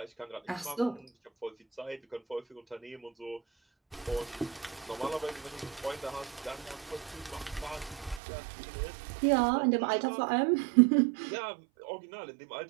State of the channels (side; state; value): left; drops out; at 8.2 s